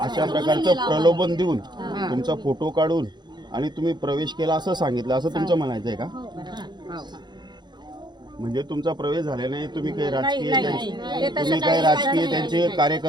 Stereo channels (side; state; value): left; late; 0.21 ms